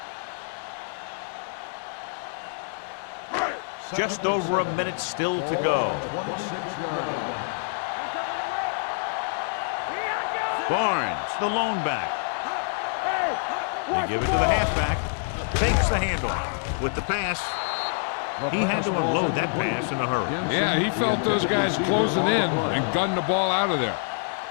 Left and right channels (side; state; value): right; silent; digital silence